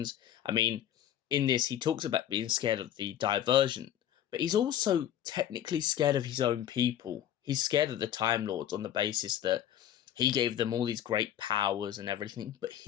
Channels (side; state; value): right; quieter; 11.0 dB